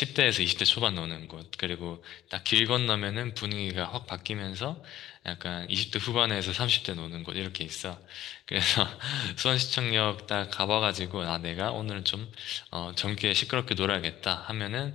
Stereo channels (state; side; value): quieter; right; 13.2 dB